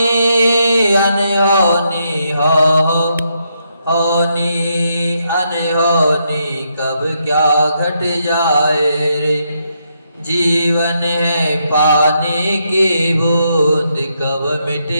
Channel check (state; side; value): inverted; both; correlation -0.79